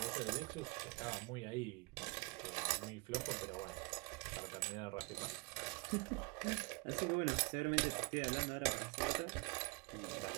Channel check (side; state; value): left; quieter; 29.0 dB